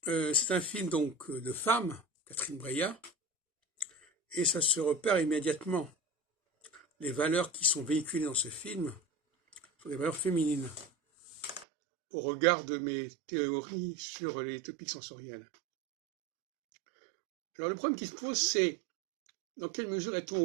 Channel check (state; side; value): drops out; left; at 11.7 s